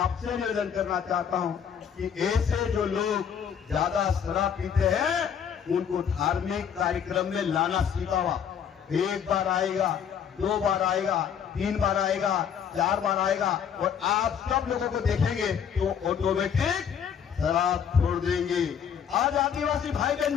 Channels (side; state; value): right; quieter; 7.9 dB